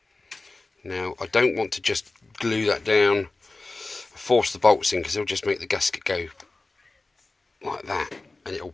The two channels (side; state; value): right; quieter; 3.3 dB